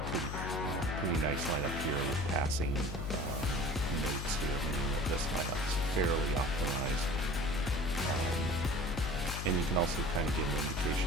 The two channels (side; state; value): left; noise; hum, 4 dB below the sound